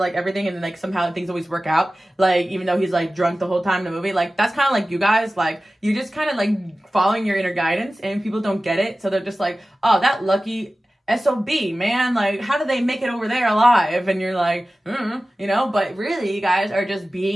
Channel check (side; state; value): both; normal; correlation 0.96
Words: everything and then like somehow things always work out, like even though he's like drunk the whole time in the movie. Like that's kind of like you guys, like you just kind of like following your inner guidance, and people don't get it, so they're just like, oh, that lucky SOB, man, like how did they make it over there alive? And you're like, you know, but really you guys are just